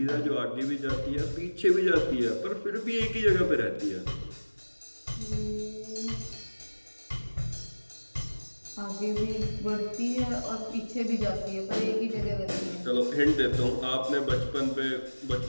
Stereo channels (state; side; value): inverted; both; correlation -1.00